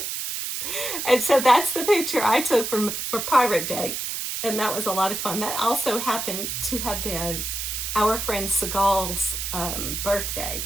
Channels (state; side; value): noise; right; hiss, 4 dB below the sound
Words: And so that's the picture I took for Pirate Day, and that was a lot of fun. That also happened to have been our friend Seagal's birthday.